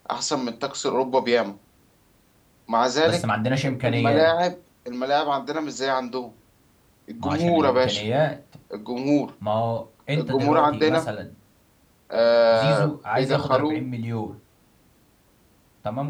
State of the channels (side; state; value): both; identical; correlation 1.00